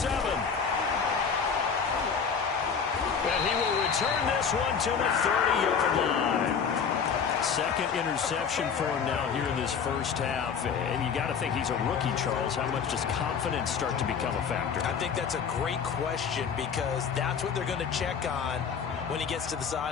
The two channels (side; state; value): right; quieter; 6.4 dB